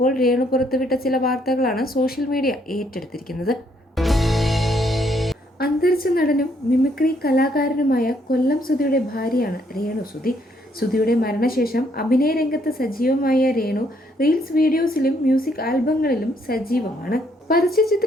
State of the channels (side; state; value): both; normal; correlation 0.70